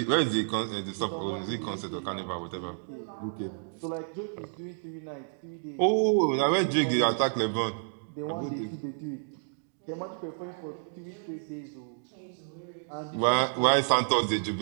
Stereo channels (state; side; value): silent; left; digital silence